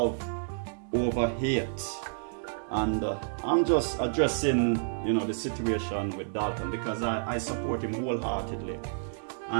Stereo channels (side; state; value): left; silent; digital silence